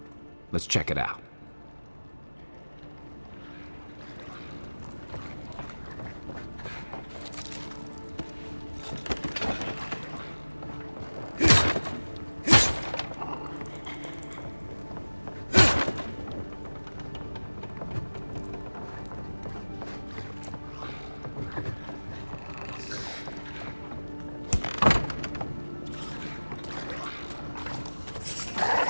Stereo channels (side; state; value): both; inverted; correlation -1.00